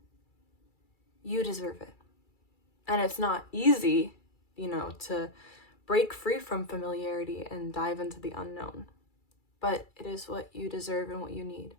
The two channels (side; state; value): right; late; 2.3 ms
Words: you deserve it. And it's not easy, to break free from familiarity and dive into the unknown, but it is what you deserve and what you need.